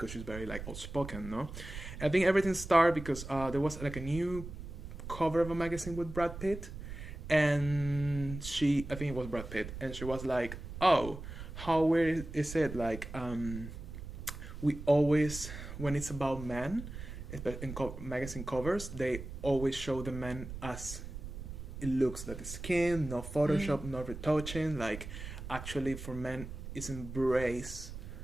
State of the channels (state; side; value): noise; right; rumble, 10 dB below the sound